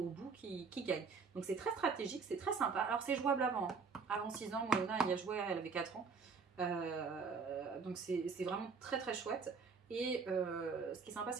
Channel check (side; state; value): left; quieter; 5.2 dB